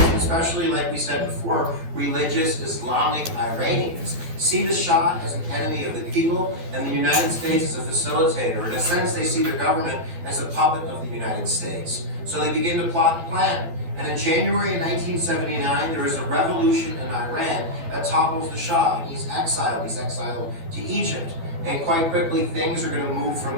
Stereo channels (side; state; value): left; late; 12 ms